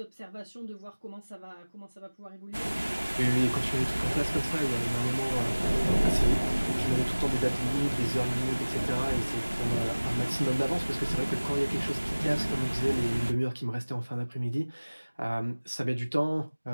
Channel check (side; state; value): both; inverted; correlation -1.00